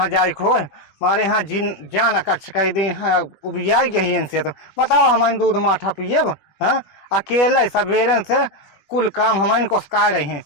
जाए खोए हमारे यहाँ जिन जान कच्छ कई दिन है उबियाई गई इनसे। तो बताओ हमारे दूध माठा पिएब हाँ अकेले सवेरे से कुल काम हमारे कोसका रही हैं।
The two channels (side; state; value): right; late; 21 ms